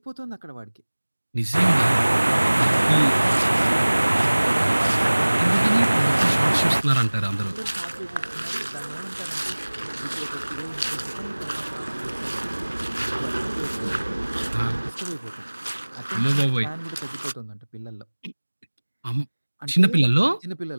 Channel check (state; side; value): inverted; both; correlation -1.00